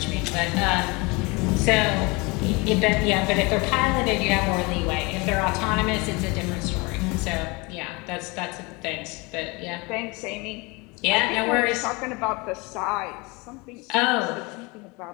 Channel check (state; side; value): quieter; right; 26.6 dB